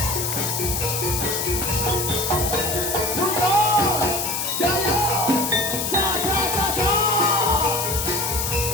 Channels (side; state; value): left; noise; hiss, 2 dB below the sound